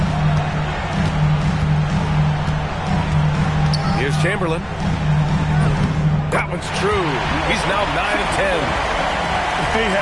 Here's Chamberlain. That one's true. He's now 9 of 10. They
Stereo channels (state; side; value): identical; both; correlation 1.00